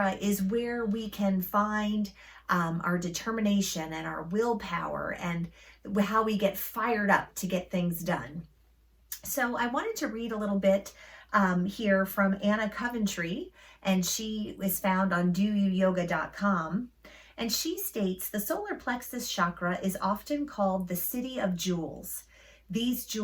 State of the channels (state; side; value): identical; both; correlation 1.00